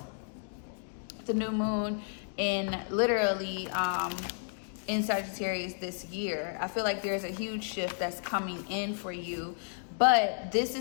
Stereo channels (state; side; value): silent; right; digital silence